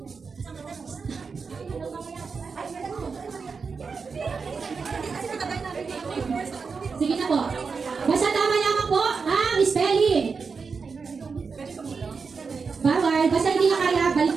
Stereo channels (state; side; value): quieter; left; 5.1 dB